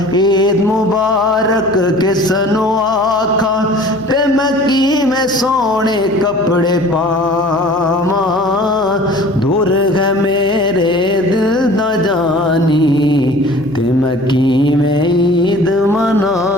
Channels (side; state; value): right; noise; hum, 19 dB below the sound